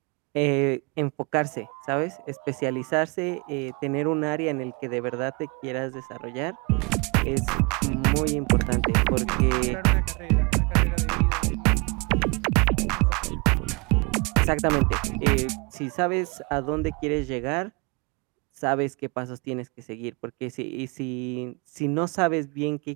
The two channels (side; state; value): left; quieter; 29.6 dB